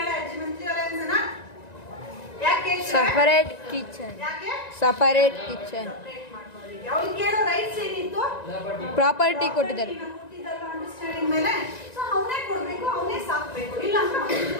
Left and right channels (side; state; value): right; late; 1.9 ms